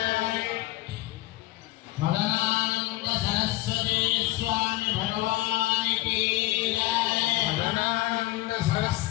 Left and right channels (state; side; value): quieter; right; 17.8 dB